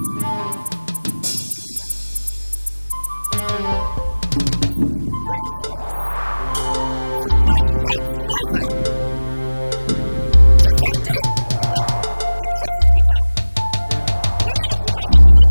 my mother? Did you just make reference to my late mother? Chisimde! Adaku, the truth is bitter. Women of Umeze do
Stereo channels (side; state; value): both; inverted; correlation -1.00